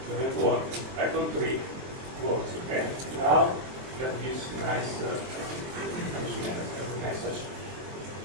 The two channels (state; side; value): late; left; 23 ms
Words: doesn't work. Python 3 works. Okay. Now that this nice message